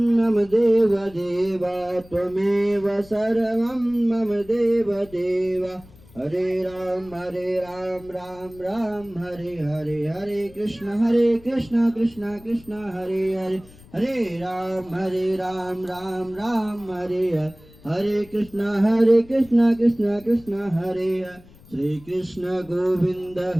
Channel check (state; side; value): noise; left; rumble, 23 dB below the sound